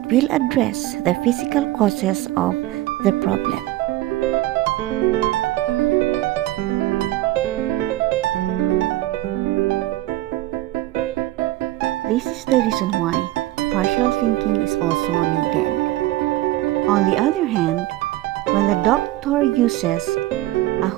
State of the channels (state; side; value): quieter; left; 16.3 dB